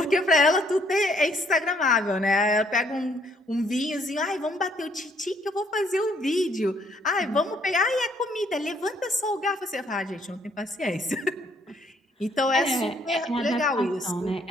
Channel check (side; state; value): both; normal; correlation 0.67